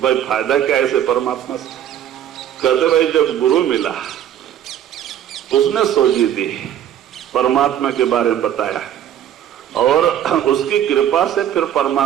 भाई फायदा क्या ऐसे परमात्मा से? कहते भाई जब गुरु मिला उसने सोची दी, परमात्मा के बारे में बताया, और उसकी कृपा से फिर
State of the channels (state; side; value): quieter; left; 10.6 dB